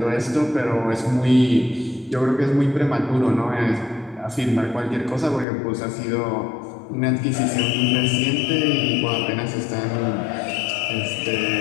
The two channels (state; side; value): drops out; right; at 5.5 s